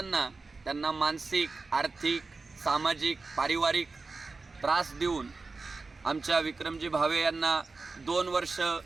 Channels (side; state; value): left; quieter; 3.9 dB